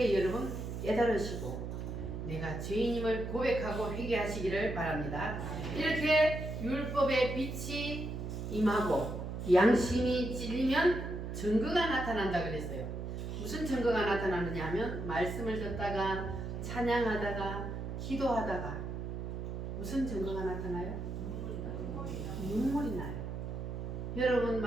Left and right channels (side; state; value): right; noise; hum, 5 dB below the sound